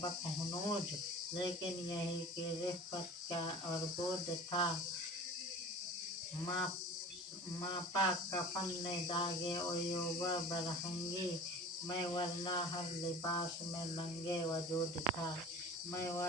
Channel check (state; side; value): normal; both; correlation 0.40